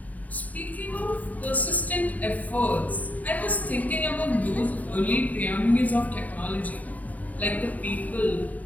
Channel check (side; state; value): right; late; 0.074 ms